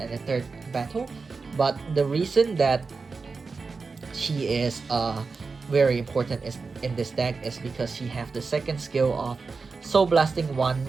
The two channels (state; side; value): quieter; left; 4.5 dB